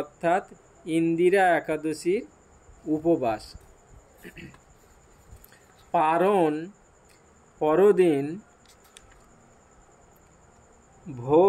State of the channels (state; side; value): identical; both; correlation 1.00